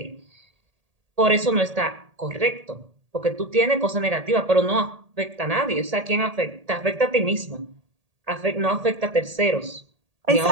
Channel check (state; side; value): late; left; 1.8 ms